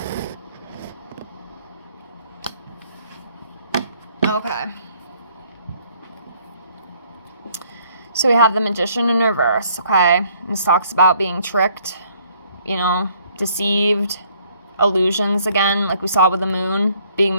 Okay. So we have the Magician in reverse, okay? This talks about being tricked, you know, deceived, illusions again, like we saw with the Moon, being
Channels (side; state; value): both; inverted; correlation -0.63